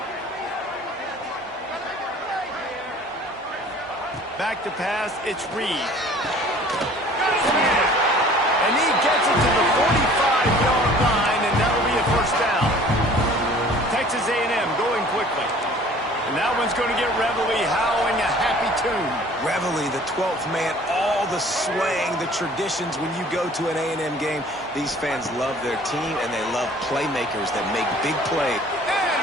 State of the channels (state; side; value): normal; both; correlation 0.50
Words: Back to pass, it's Reed. Got his man. And he gets it to the 45-yard line, and that'll be a first down. Texas A&M going quickly. And that one's going to get Reveille howling a happy tune. Reveille, the 12th man, all the swaying, the traditions when you go to an A&M game. These fans love their team, and they love playmakers that make big plays.